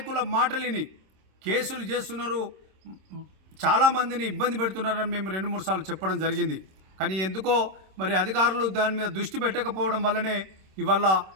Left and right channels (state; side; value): late; left; 26 ms